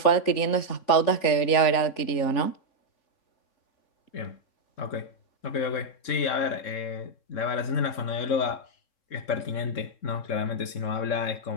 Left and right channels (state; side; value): late; right; 3.4 ms